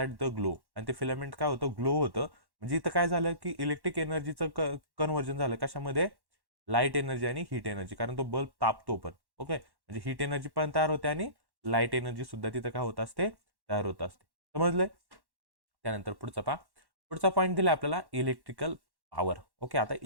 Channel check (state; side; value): late; left; 1.1 ms